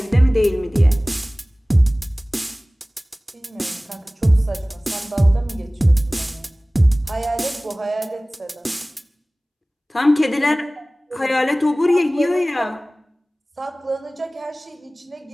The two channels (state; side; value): normal; both; correlation 0.98